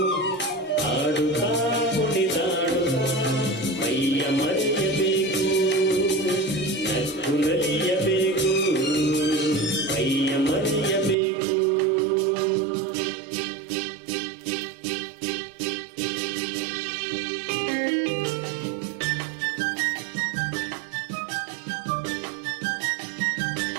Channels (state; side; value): drops out; left; at 11.2 s